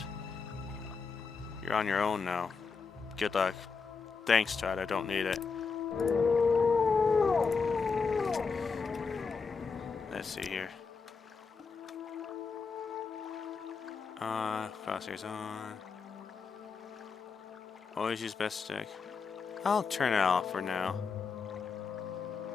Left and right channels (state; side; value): quieter; right; 5.1 dB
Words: You're on your own now. Good luck. Thanks, Todd. I don't need it. Let's see here. Crosshairs on. Always use best stick. I'll turn it off for now.